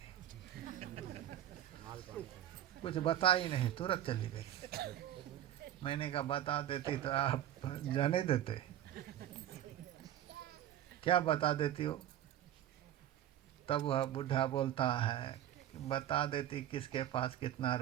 कुछ बता ही नहीं, तुरंत चली गई। मैंने कहा, बता देती तो आप जाने देते, क्या बता देती हो? तब वह बूढ़ा बोलता है, बता देती किसके पास कितना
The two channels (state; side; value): quieter; left; 11.9 dB